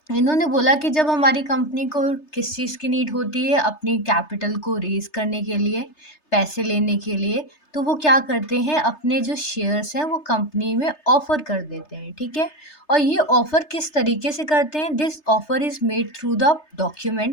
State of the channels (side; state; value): right; late; 3.3 ms